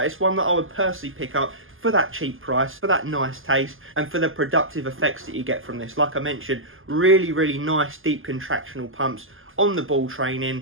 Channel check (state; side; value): late; left; 0.59 ms